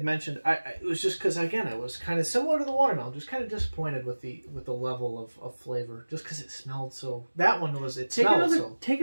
mentioned, it was just because, again, I was kind of similar to the watermelon, just kind of disappointed with the level of flavor, just because it smelled so. That one was Take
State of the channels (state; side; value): inverted; both; correlation -1.00